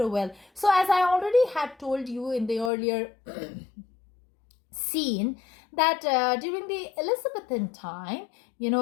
well. So as I already had told you in the earlier scene, that during the Elizabethan time,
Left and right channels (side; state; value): right; drops out; at 2.7 s